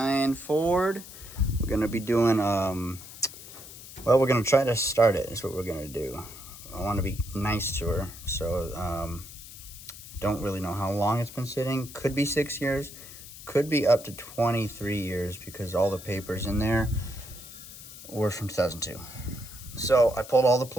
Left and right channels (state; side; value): noise; left; hiss, 15 dB below the sound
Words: Ford. We're going to be doing, we're going to try to start it is what we're going to do. I want to be nice to her, so don't really know how long it's been sitting. Could be 6 years, could be up to 23 years because all the papers in there were from 2002. So I pulled all the